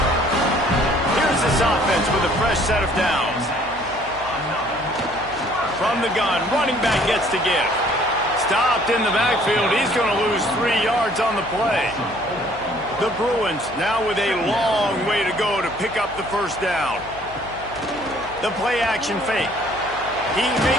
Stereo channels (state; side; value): noise; left; hum, 18 dB below the sound